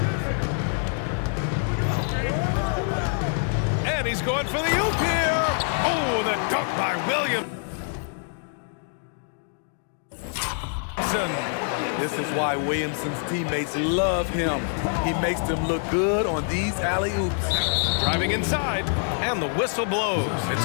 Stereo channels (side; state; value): right; silent; 61 dB below the other